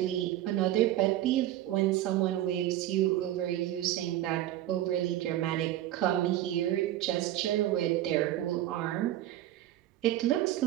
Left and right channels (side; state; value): left; quieter; 13.6 dB